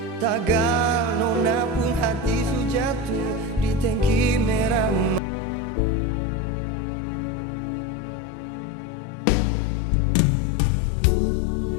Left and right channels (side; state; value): right; drops out; at 5.2 s